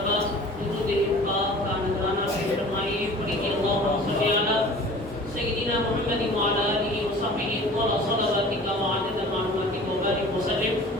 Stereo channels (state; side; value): normal; both; correlation 0.44